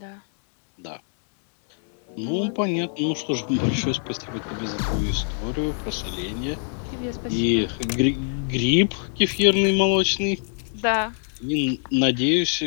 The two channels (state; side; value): silent; right; 62 dB below the other